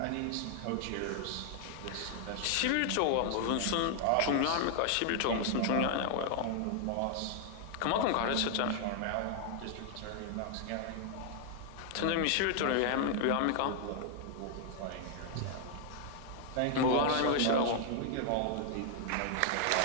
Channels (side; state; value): both; different; correlation 0.00